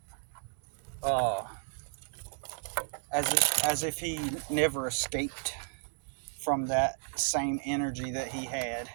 uh, as if he never escaped from that same energy that he had.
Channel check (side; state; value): left; silent; 56 dB below the other